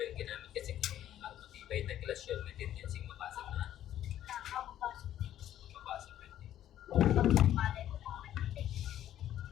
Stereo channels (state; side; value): quieter; right; 11.8 dB